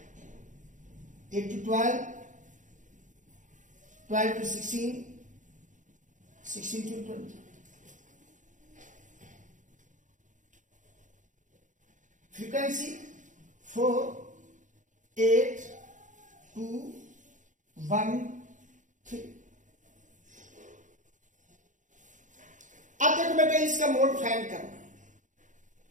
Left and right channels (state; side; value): late; left; 0.37 ms